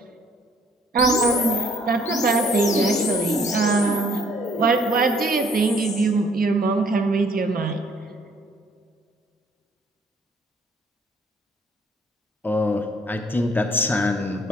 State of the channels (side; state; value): both; normal; correlation 0.61